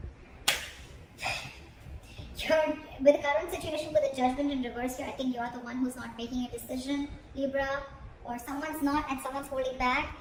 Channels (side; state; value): both; identical; correlation 1.00